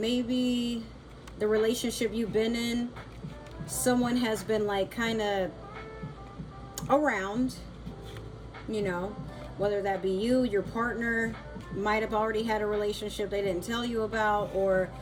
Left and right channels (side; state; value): both; identical; correlation 1.00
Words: the relationship you've been in, someone has been like kind of around, you know, whether that be you, your partner might have already had a relationship they didn't tell you about, or